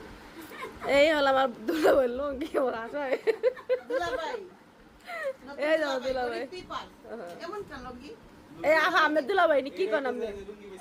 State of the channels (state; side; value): identical; both; correlation 1.00